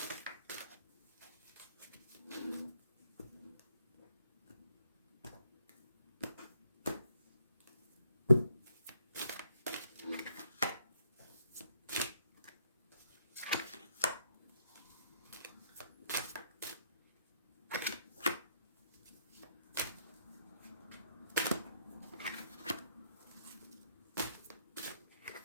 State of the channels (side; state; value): both; inverted; correlation -0.72